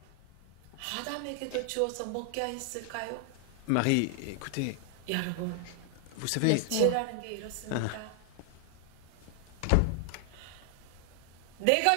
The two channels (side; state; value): both; different; correlation 0.00